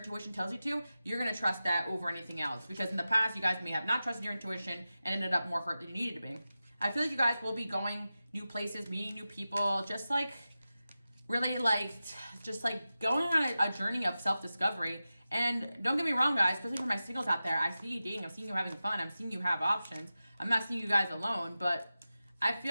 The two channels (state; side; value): inverted; both; correlation -0.94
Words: tells you to, you're going to trust that over anything else. Because in the past, you guys may have not trusted your intuition and ended up more hurt than you needed to be. I feel like you guys will be going new places, meeting new people, just like really like, just like going on a journey of self-discovery. And don't get me wrong, guys, especially for my singles out there, I see you dating, I'm seeing you having fun, I'm seeing you have options. I'm not seeing you guys alone, but I